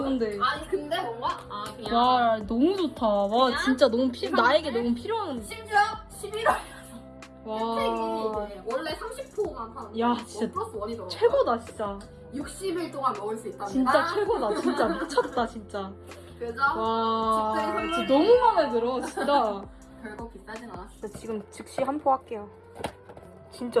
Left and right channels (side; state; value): both; identical; correlation 1.00